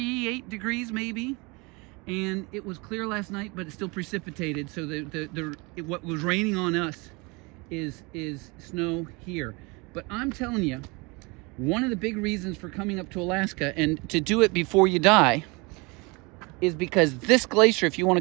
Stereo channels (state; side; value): quieter; left; 27.4 dB